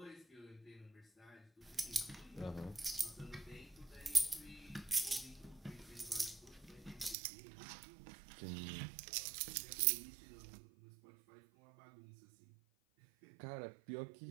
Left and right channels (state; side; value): drops out; left; at 7.2 s